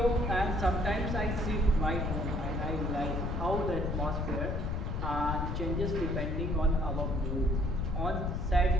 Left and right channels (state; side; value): noise; left; rumble, 1 dB below the sound